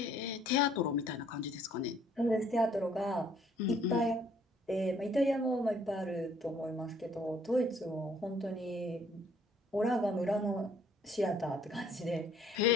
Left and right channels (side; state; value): both; normal; correlation 0.62